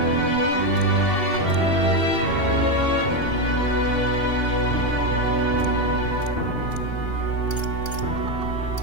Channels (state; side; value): late; right; 2.8 ms